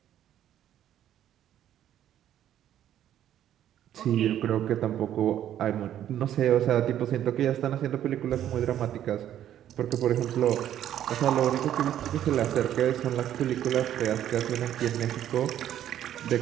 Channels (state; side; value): quieter; left; 11.2 dB